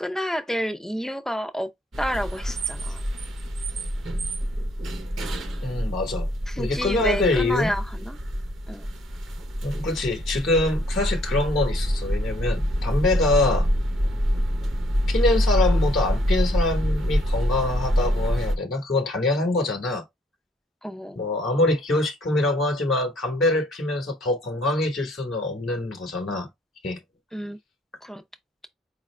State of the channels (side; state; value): both; normal; correlation 0.65